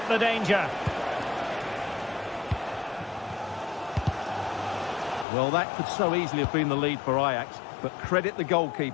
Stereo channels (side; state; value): right; drops out; at 5.2 s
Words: the danger. Well, that could so easily have been the lead for Ajax, but credit the